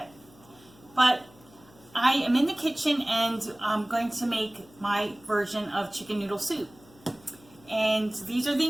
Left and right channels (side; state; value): left; noise; hum, 26 dB below the sound